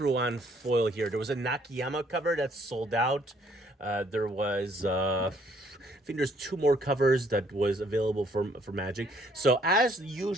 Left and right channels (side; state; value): both; normal; correlation 0.64